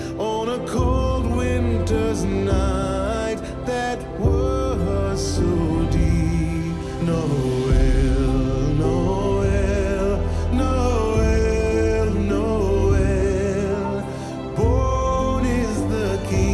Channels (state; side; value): identical; both; correlation 1.00